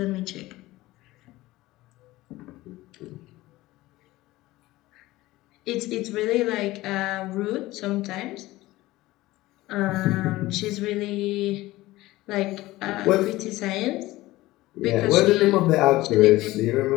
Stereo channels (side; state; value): right; quieter; 18.0 dB